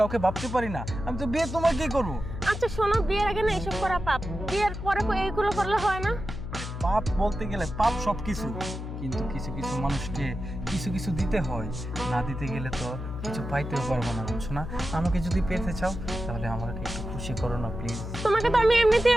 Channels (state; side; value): noise; left; hum, 7 dB below the sound